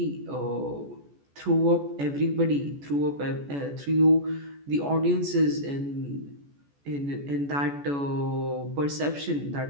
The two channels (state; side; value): late; left; 14 ms